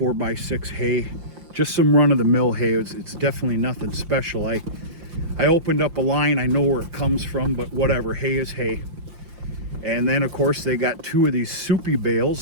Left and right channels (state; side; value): late; left; 5.7 ms